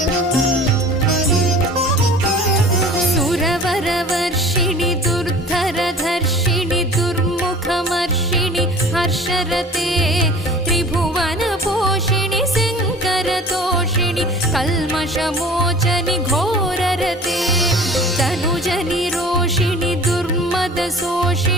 सुरवरवर्षिणि दुर्धरधर्षिणि दुर्मुखमर्षिणि हर्षरते त्रिभुवनपोषिणि शङ्करतोषिणि कल्मषमोचनि घोररते तनुजनिरोषिणि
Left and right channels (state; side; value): normal; both; correlation 0.44